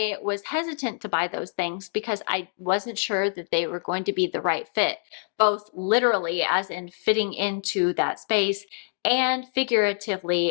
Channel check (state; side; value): silent; right; digital silence